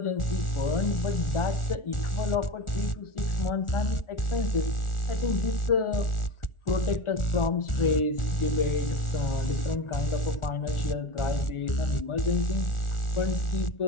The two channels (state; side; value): late; right; 1.4 ms